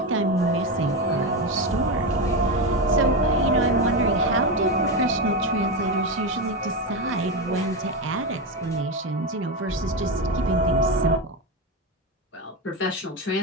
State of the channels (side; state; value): both; normal; correlation 0.14